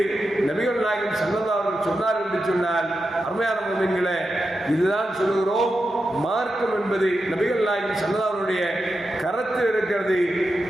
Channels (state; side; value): normal; both; correlation 0.89